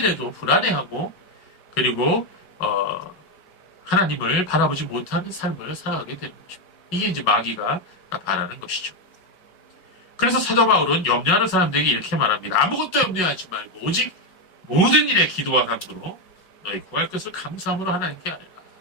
불안해하고 그리고 하나님을 바라보지 못하는 삶을 살아가게 되는 것입니다. 이게 이제 마귀가 바라는 것이죠. 그래서 사도 바울은 염려하는 사람들에게 이렇게 말합니다. 아무것도 염려하지 말고 오직 모든 일에 기도와 간구로 너희 구할 것을 감사함으로 하나님께 아뢰라.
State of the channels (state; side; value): late; right; 5.4 ms